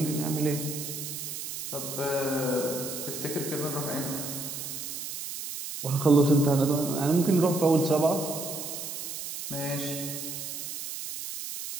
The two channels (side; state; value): right; noise; hiss, 7 dB below the sound